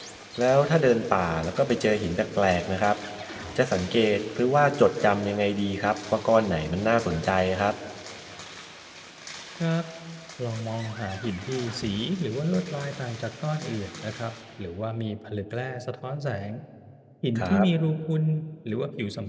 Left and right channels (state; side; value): identical; both; correlation 1.00